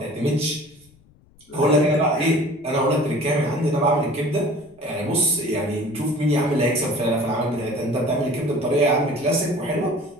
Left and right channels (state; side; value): noise; left; rumble, 30 dB below the sound